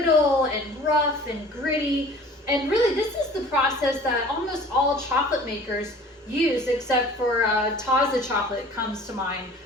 and rough and gritty. And really, this is the process that almost all chocolate makers use, except for Taza chocolate comes to mind,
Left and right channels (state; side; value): normal; both; correlation 0.46